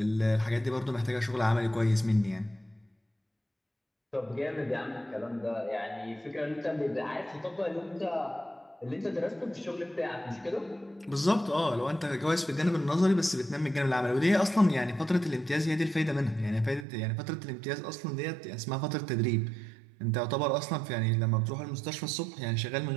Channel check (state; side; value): drops out; left; at 16.9 s